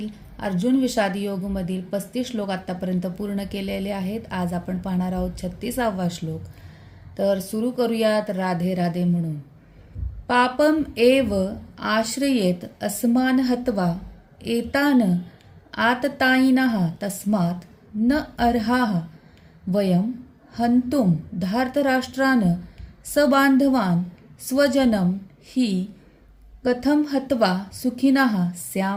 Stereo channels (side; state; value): both; identical; correlation 1.00